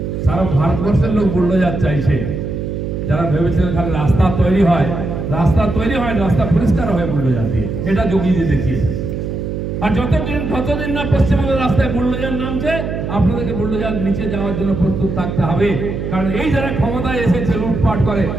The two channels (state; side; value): noise; right; hum, 4 dB below the sound